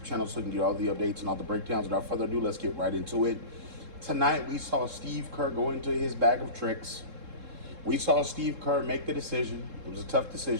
channel so you can get all the updates and all the breakdowns. Without further ado, let's get right into it. Tonight, we saw Steve Kerr go into his bag of tricks. We saw Steve Kerr make the decision. It was a tough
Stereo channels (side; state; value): left; late; 3.7 ms